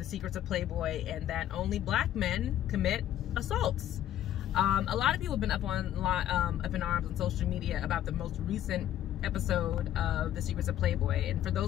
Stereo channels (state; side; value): quieter; right; 11.8 dB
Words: secrets of Playboy and that only black men commit assaults. A lot of people have been up in arms on social media about the most recent episode of The Secrets of Playboy. And for